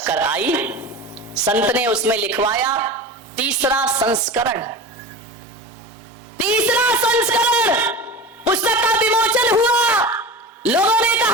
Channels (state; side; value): normal; both; correlation 0.30